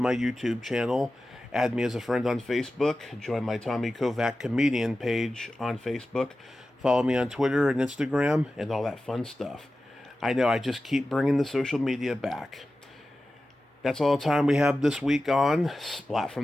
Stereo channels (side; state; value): both; normal; correlation 0.94